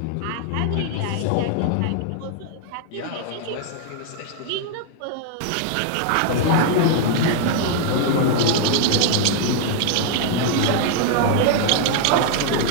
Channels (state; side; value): different; both; correlation 0.00